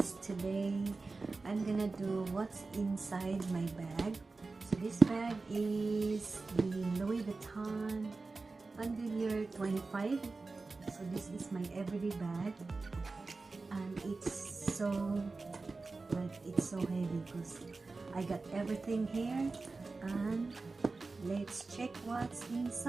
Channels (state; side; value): quieter; left; 3.8 dB